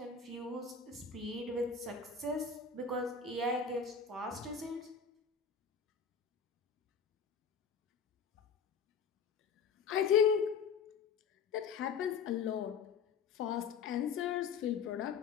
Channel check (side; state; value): right; quieter; 5.9 dB